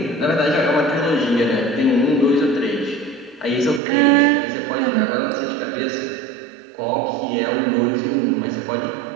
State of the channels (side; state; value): left; drops out; at 3.8 s